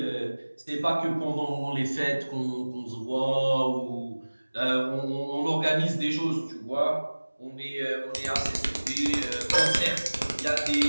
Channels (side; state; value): both; inverted; correlation -1.00